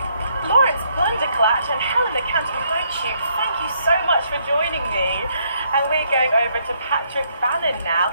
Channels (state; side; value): inverted; both; correlation -0.71